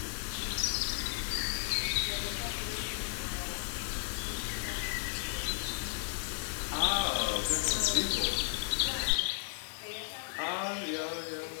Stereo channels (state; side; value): silent; right; 55 dB below the other